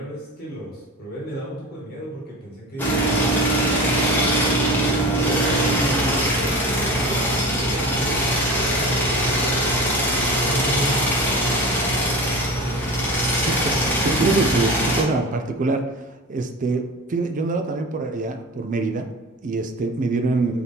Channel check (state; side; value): normal; both; correlation 0.33